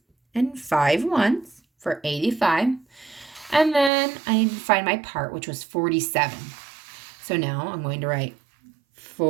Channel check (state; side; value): drops out; left; at 3.9 s